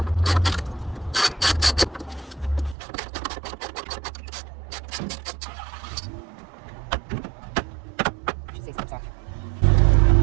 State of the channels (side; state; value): left; drops out; at 2.8 s